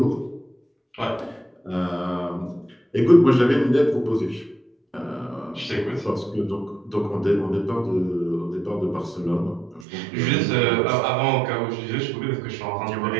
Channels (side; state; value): left; drops out; at 9.9 s